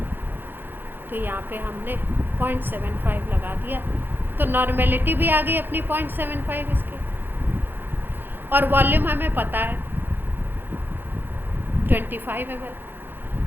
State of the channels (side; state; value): left; late; 0.097 ms